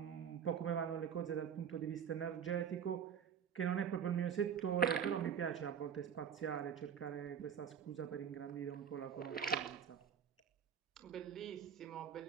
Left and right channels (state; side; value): quieter; left; 8.0 dB